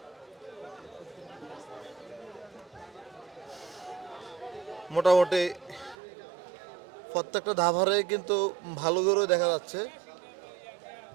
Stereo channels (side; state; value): left; drops out; at 6.0 s